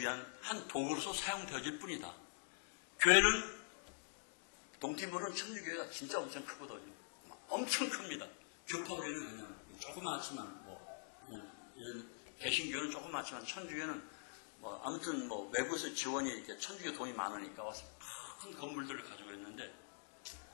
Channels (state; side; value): silent; right; digital silence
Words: 한 도구로서 사용되어질 뿐이다. 교회는 동티모르는 천주교회가 진짜 엄청 크거든요. 엄청 큽니다. 교파교회는 그냥 조그맣지만 이런 개신교는 조그맣지만 천주교회는 아무튼 외부에서 지원이 이렇게 천주교 돈이 많으니까 와서 큰 건물들을 가지고 있는데